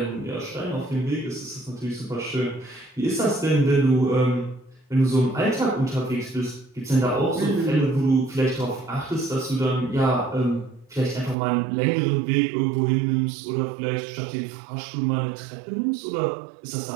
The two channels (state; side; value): drops out; left; at 11.4 s